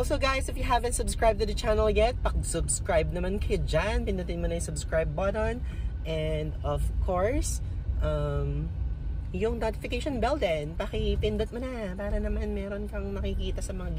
guys, if you haven't subscribed to the channel yet, pag-subscribe naman kayo dyan. Pindutin mo na yung subscribe button. And of course, yung notification bell din, pakipindot mo na para naman meron kang makikita sa mga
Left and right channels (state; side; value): identical; both; correlation 1.00